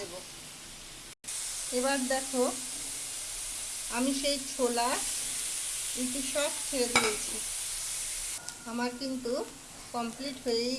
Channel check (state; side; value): identical; both; correlation 1.00